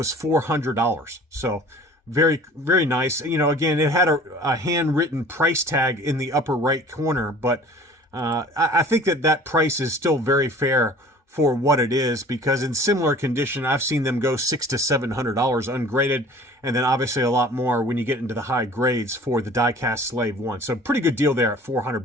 $400. So very, very nice. You know, again, it had a handwritten price tag in the upper right corner, but I think that price is still very fair for what it is, because in similar condition, I've seen them go $600 to $700 ungraded, and then obviously a lot more when you get into the high grades for the die-cast Slave 1. So pretty good deal there at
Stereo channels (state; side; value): normal; both; correlation 0.47